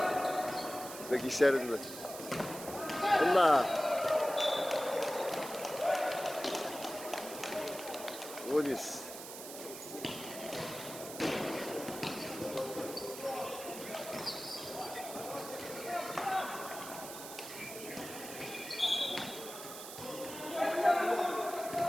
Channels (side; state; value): right; noise; hiss, 11 dB below the sound